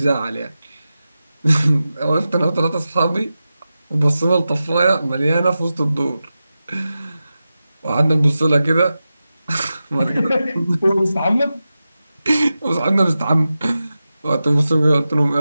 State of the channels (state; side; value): inverted; both; correlation -0.93